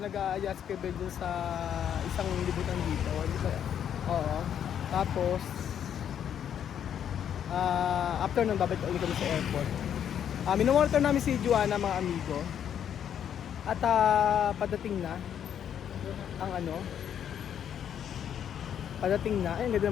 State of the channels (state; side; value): quieter; right; 9.2 dB